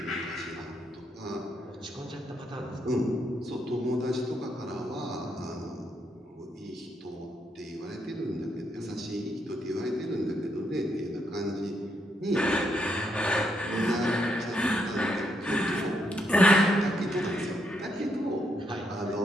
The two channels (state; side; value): normal; both; correlation 0.77